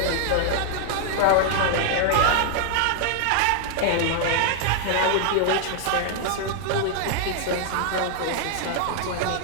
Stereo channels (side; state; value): both; different; correlation 0.00